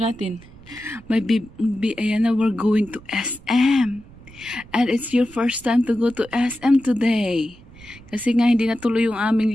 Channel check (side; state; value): right; noise; rumble, 21 dB below the sound